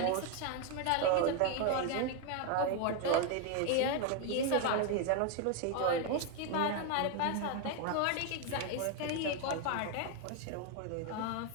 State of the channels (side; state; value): both; different; correlation 0.01